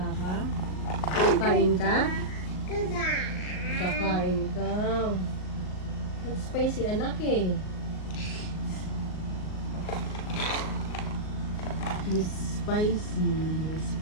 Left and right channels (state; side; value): late; right; 38 ms